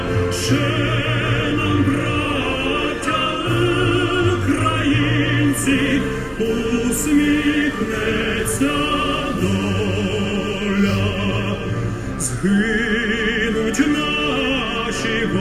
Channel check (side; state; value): both; identical; correlation 1.00